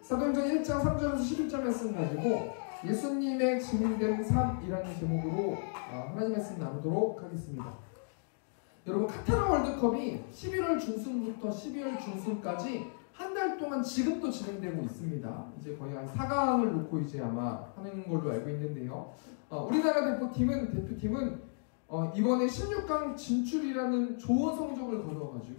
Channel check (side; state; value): right; silent; digital silence